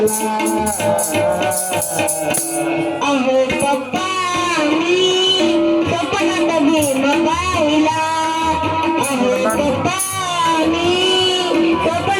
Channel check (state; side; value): identical; both; correlation 1.00